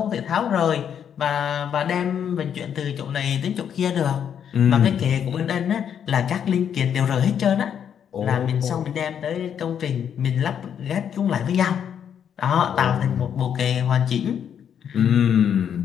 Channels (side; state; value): right; quieter; 8.5 dB